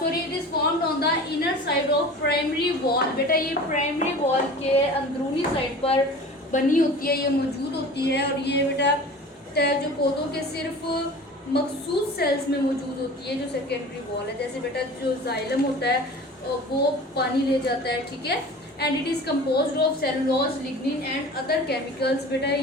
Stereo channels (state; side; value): normal; both; correlation 0.39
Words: is formed on the inner side of primary wall. बेटा ये प्राइमरी वॉल के अंदरूनी साइड पर बनी होती है, ये मौजूद होती है। और ये बेटा जो पौधों के सिर्फ मखसूस सेल्स में मौजूद होती है, जो सेकेंडरी वॉल है। जैसे बेटा जो जाइलम होता है वो पानी ले जाता है, ठीक है। And it is composed of cellulose, lignin and other chemicals. बेटा